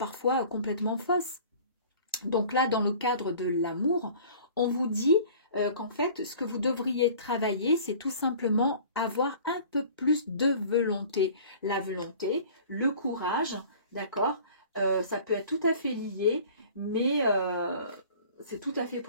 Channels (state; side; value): inverted; both; correlation -0.47